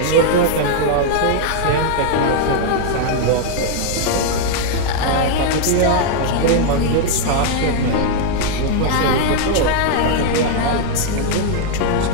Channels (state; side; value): different; both; correlation 0.00